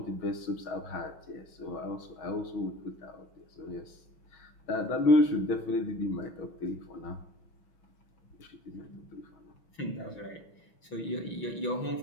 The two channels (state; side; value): late; right; 6.0 ms